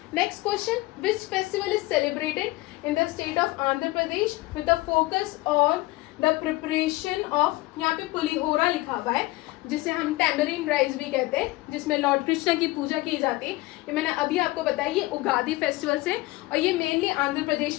Next question, which festival is celebrated in the state of Andhra Pradesh with the focus on the preparation of, यहाँ पे पुलिहोरा लिखा हुआ है जिसे हम टैमरिन राइस भी कहते हैं, जिसमें लॉर्ड कृष्ण की पूजा की जाती है। ये मैंने अभी आपको बताया, ये उगादी फेस्टिवल से, और ये मेनली आंध्र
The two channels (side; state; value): right; quieter; 20.2 dB